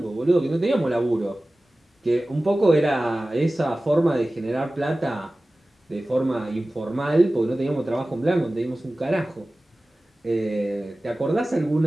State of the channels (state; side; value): normal; both; correlation 0.97